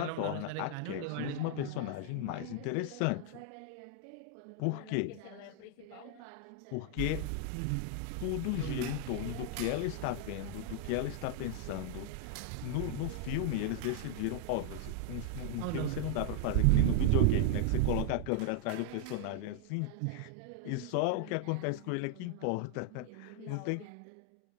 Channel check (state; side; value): different; both; correlation 0.00